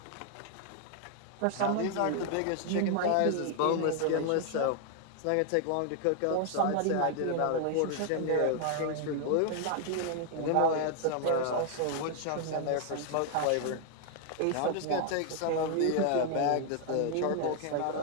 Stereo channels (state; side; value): different; both; correlation 0.00